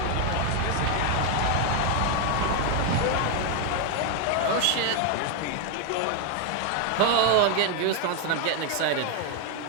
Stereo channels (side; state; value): both; different; correlation 0.01